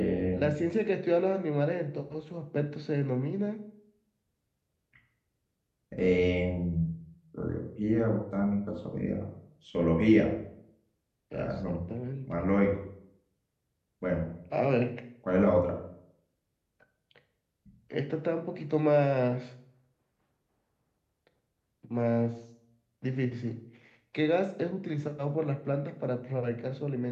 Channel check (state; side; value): identical; both; correlation 1.00